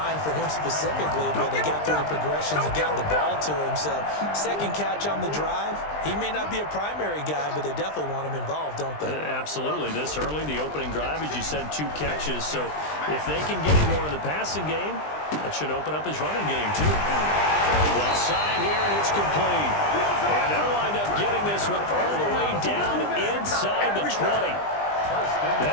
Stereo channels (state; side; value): late; right; 20 ms